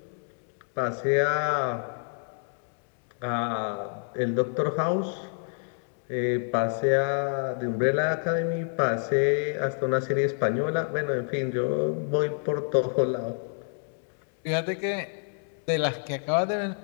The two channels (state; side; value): silent; right; 57 dB below the other